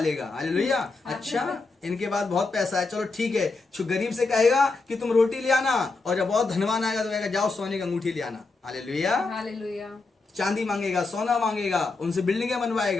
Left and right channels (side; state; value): right; quieter; 3.8 dB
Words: हालेलुया। अच्छा, इनके पास बहुत पैसा है, चलो ठीक है। जो गरीब से कहेगा कि तुम रोटी ले आना, और जब बहुत धनवान आएगा तो कहेगा जाओ सोने की अंगूठी ले आना। हालेलुया। हालेलुया। चांदी मांगेगा, सोना मांगेगा, उनसे बिल्डिंगें